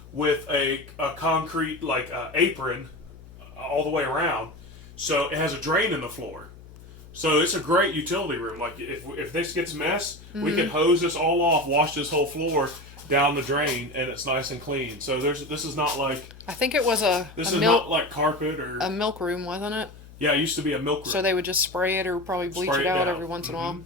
with a concrete apron all the way around. So it has a drain in the floor. So it's a great utility room. Like if this gets mess, we Mm-hmm. can hose this all off, wash this whole floor down the drain, and it's nice and clean. So this is not like I think it was a not like carpet or milk room, wasn't it? yeah, it used to be a milk room. So they would just spray it or probably bleach Spray it it out down. every once in a while.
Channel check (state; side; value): noise; left; hum, 19 dB below the sound